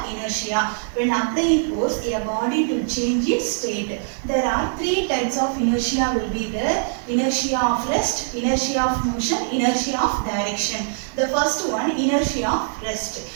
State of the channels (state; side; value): silent; left; digital silence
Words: inertia. When applying force, a body to change its state. There are three types of inertia will be there: inertia of rest, inertia of motion, inertia of direction. The first one, inertia of rest.